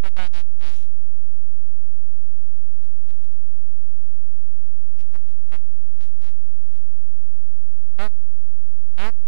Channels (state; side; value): silent; left; 52 dB below the other